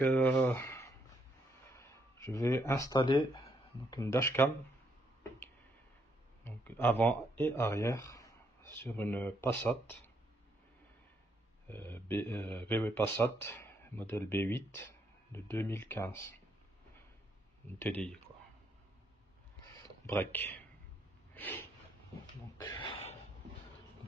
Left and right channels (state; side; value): normal; both; correlation 0.74